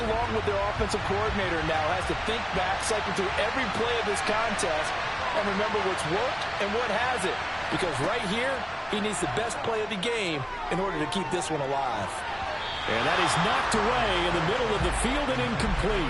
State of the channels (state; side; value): identical; both; correlation 1.00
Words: with their offensive coordinator now. Has to think back, cycle through every play of this contest, and remember what's worked and what hasn't. Because right here, he needs the best play of the game in order to keep this one alive. And that is knocked away in the middle of the field and